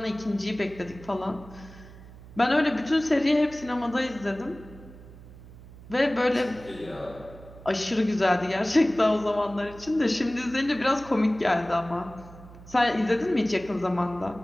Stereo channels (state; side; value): noise; right; hum, 18 dB below the sound